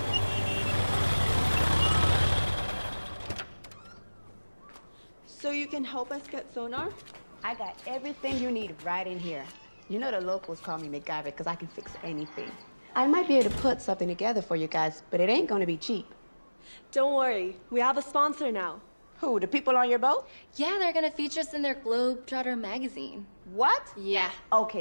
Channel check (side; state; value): both; inverted; correlation -1.00